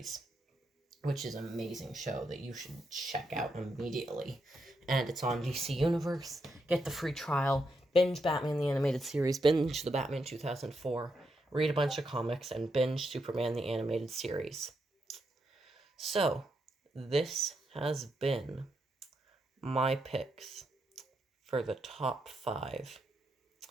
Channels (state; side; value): normal; both; correlation 0.81